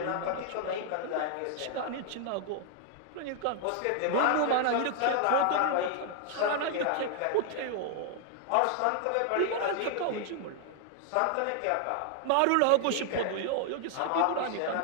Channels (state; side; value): different; both; correlation 0.00